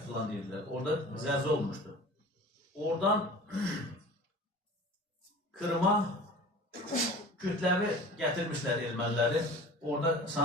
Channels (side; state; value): both; normal; correlation 0.40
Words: filan deyirlər. Orada zəlzələ olmuşdu. Oradan Kırıma kütləvi gətirmişlər erməniləri. Orada